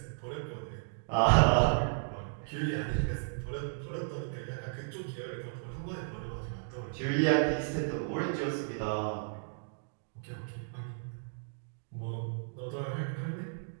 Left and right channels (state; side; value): silent; left; digital silence